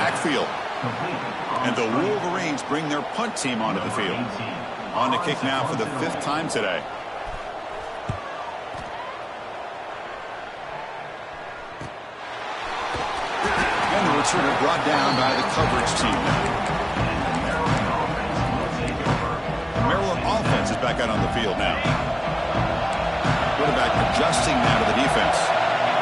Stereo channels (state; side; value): identical; both; correlation 1.00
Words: And the Wolverines bring their punt team onto the field. On to kick now for the 5th time today. And the returner brought down by the coverage team now. The Maryland offense is back out on the field now. Quarterback adjusting now to the defense.